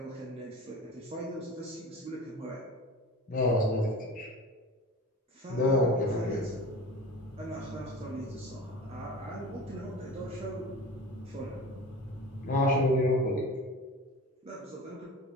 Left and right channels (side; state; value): both; normal; correlation 0.35